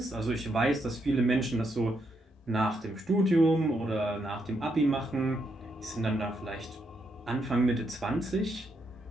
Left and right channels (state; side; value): normal; both; correlation 0.79